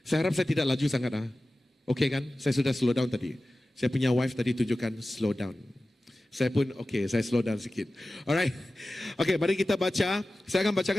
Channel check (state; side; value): normal; both; correlation 0.96